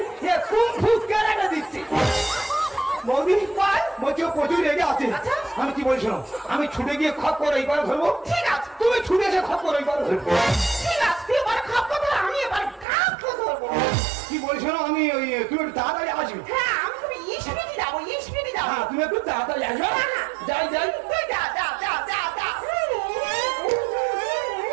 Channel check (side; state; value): left; drops out; at 12.9 s